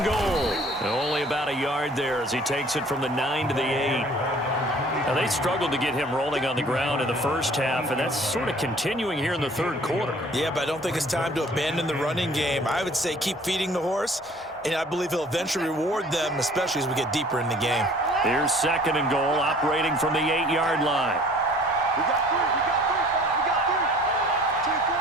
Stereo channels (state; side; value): normal; both; correlation 0.52